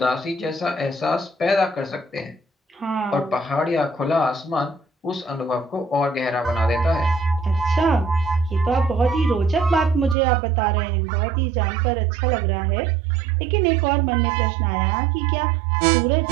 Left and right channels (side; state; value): left; drops out; at 10.2 s